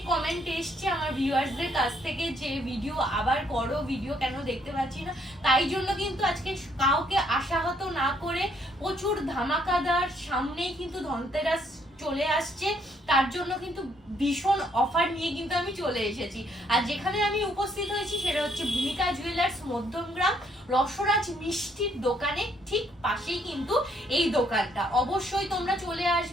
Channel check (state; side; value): normal; both; correlation 0.69